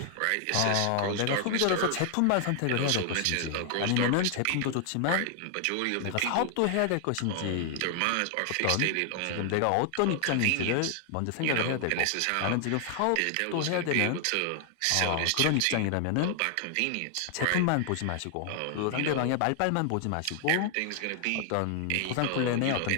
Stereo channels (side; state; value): both; different; correlation 0.00